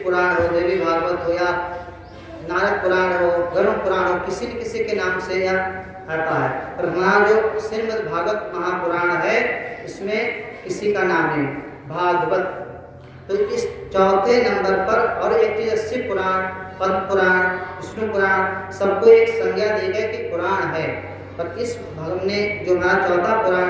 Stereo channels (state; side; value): identical; both; correlation 1.00